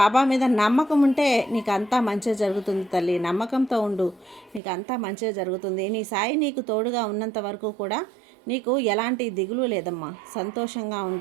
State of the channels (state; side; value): drops out; left; at 4.6 s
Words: మీద నమ్మకం ఉంటే నీకు అంతా మంచిగా జరుగుతుంది తల్లి. నమ్మకంతో ఉండు, నీకు అంతా మంచిగా జరుగుతుంది. నీ సాయి నీకు తోడుగా ఉన్నంత వరకు కూడా నీకు ఎలాంటి దిగులు లేదమ్మా. సంతోషంగా